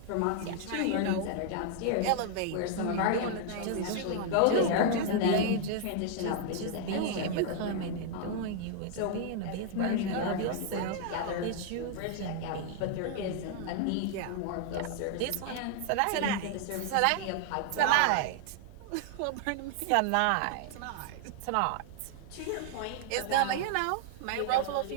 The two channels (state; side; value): different; both; correlation 0.00